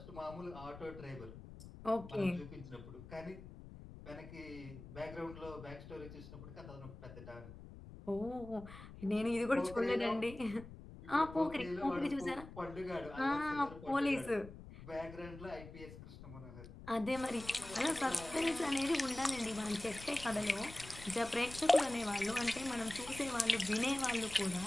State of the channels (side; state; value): left; noise; rumble, 14 dB below the sound